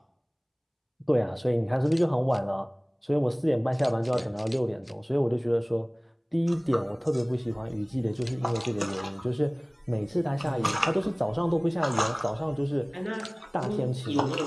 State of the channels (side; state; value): both; identical; correlation 1.00